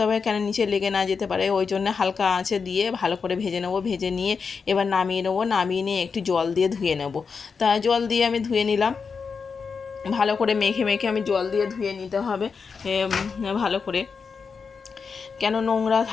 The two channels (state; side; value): quieter; right; 5.4 dB